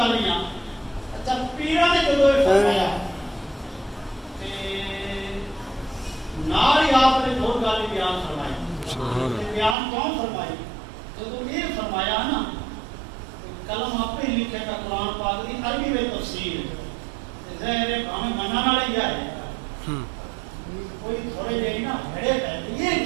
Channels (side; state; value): left; drops out; at 9.8 s